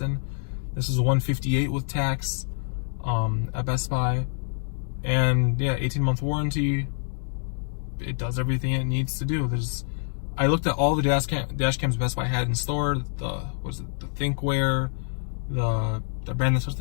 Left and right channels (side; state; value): right; silent; 61 dB below the other